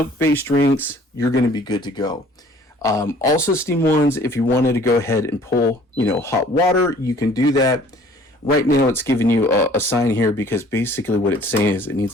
drinks, you're going to be good to go. Also, Steam 1s, if you wanted to go ahead and pull, hot water, you can do that. Right now, it's giving you a sign here because basically what it's saying is it needs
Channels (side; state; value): both; normal; correlation 0.54